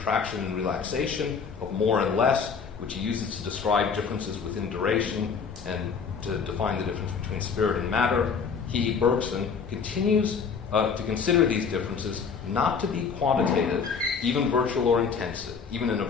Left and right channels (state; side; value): quieter; right; 6.0 dB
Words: and relaxation, of more and less, which he uses to describe differences within duration and to define the difference between spirit and matter, he, Bergson, continues to consider these differences not to be quantitative, even in a virtual or